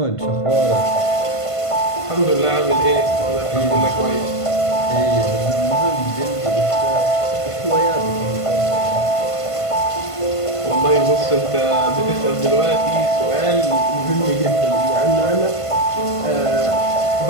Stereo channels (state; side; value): late; right; 1.5 ms